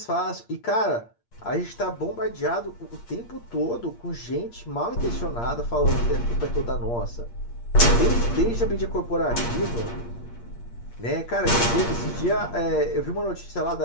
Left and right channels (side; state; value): right; late; 8.6 ms